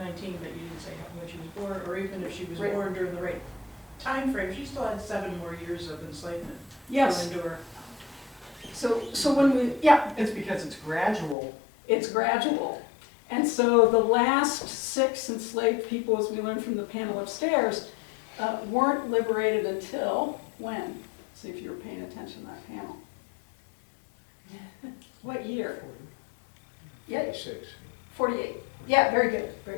but you didn't say when she was born, or even if she was Right. born during the right time frame, she still had 7 more years of enslavement Yes, to endure. so when we, yeah, It's because it's gradual. it's gradual. And so the last 6 enslaved people, as we learned from the panel upstairs, weren't liberated until when? See if you were paying attention to that panel. What year? Yeah, 6. 48. Yeah, very good,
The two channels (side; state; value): right; drops out; at 11.4 s